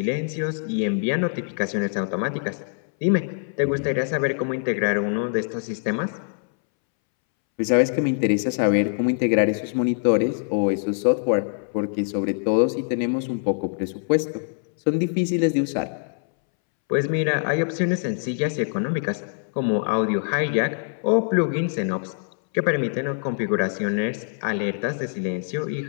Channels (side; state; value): right; silent; 63 dB below the other